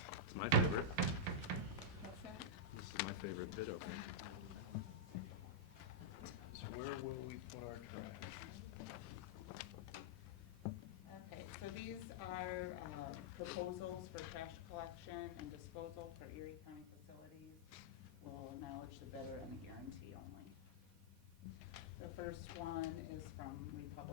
It's my favorite. What's that? This is my favorite bid opening. So where will we put our trash? Okay, so these are proposals for trash collection and disposal for Erie County facilities. We'll acknowledge the bidder and the guarantee only. The first one is from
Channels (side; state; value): both; normal; correlation -0.06